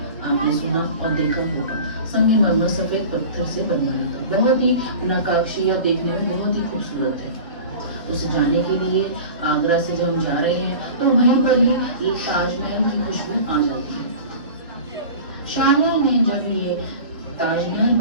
आपने सुना और देखा होगा संगमरमर सफेद पत्थर से बनवाया था। बहुत ही नक्काशी और देखने में बहुत ही खूबसूरत है। उसे जाने के लिए आगरा से जब हम जा रहे हैं तो वहीं पर ही ताजमहल की खुशबू आ जाती है। शाहजहां ने जब ये ताजमहल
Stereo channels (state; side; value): inverted; both; correlation -0.37